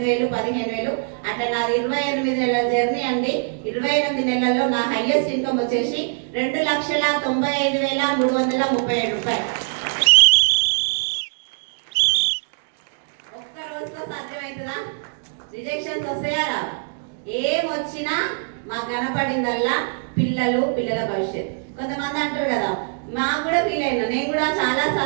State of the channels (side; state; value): left; silent; digital silence